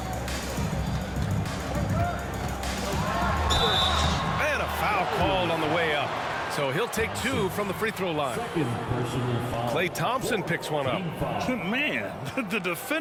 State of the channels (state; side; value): identical; both; correlation 1.00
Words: And a foul called on the way up. So he'll take 2 from the free throw line. Klay Thompson picks one up. Man, the